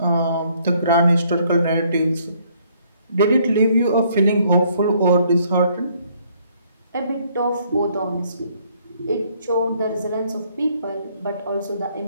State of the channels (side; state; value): both; inverted; correlation -0.66